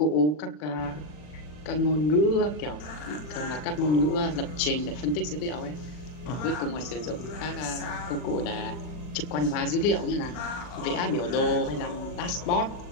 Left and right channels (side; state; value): right; late; 40 ms